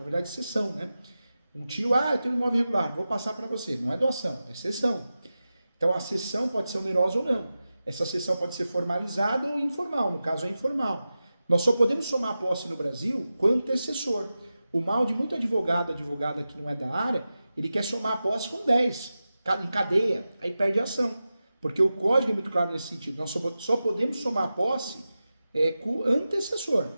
verdade cessão, né? Um tio, eu tenho um imóvel irregular, vou passar para você. Não é doação, é cessão. Então a cessão pode ser onerosa ou não. Essa cessão pode ser formalizada ou informal, no caso é informal. Nós só podemos somar a posse no Brasil com antecessor. O mal de muito advogada que não é da área, ele quer somar a posse com 10, em cadeia, aí perde a ação. Porque o código é muito claro nesse sentido. Nós só podemos somar a posse com antecessor.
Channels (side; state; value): both; inverted; correlation -0.93